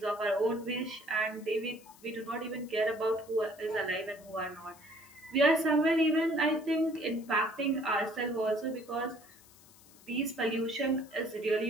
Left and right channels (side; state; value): left; noise; hiss, 24 dB below the sound